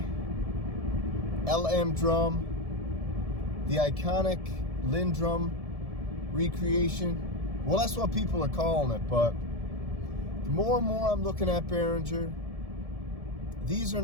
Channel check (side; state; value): left; late; 1.7 ms